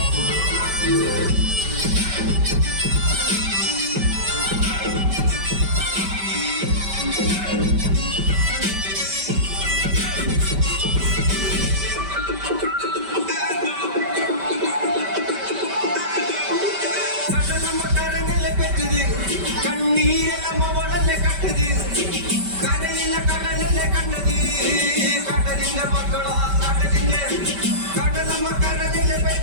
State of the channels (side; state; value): left; late; 5.1 ms